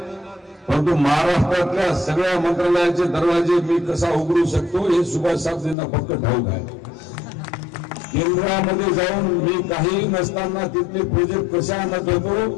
परंतु महाराष्ट्रातल्या सगळ्या मंत्रालयाचे दरवाजे मी कसा उघडू शकतो हे सुभाष साहेबांना फक्त ठाऊक आहे. केंद्रामध्ये जाऊन मी काही नसताना तिथले प्रोजेक्ट कशा आणत होतो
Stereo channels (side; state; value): right; drops out; at 5.8 s